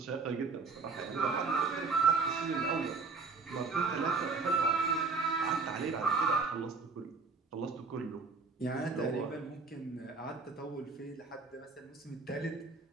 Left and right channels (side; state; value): left; quieter; 4.4 dB